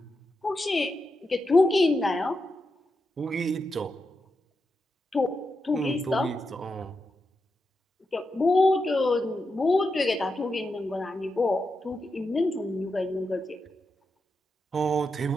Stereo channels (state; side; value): normal; both; correlation 0.87